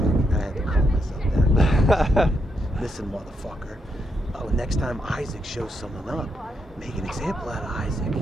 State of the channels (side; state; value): both; normal; correlation 0.80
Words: I had to calm myself down. Listen, motherfucker. Oh, next time Isaac shows someone up, make an example out of Isaac,